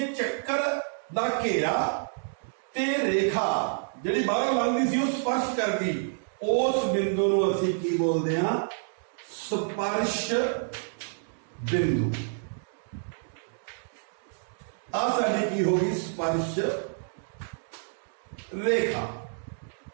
ਚੱਕਰ ਦਾ ਘੇਰਾ ਤੇ ਰੇਖਾ ਜਿਹੜੀ ਬਾਹਰੋਂ ਲੰਘਦੀ ਸੀ ਉਹ ਸਪਰਸ਼ ਕਰਦੀ, ਉਸ ਬਿੰਦੂ ਨੂੰ ਅਸੀਂ ਕੀ ਬੋਲਦੇ ਹਾਂ? ਸਪਰਸ਼ ਬਿੰਦੂ। ਆ ਸਾਡੀ ਕੀ ਹੋ ਗਈ? ਸਪਰਸ਼ ਰੇਖਾ।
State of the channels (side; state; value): left; silent; digital silence